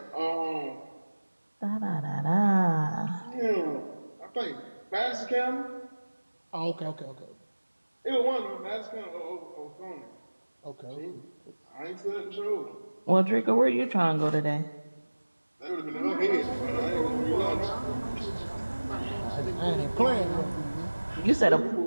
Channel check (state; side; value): inverted; both; correlation -1.00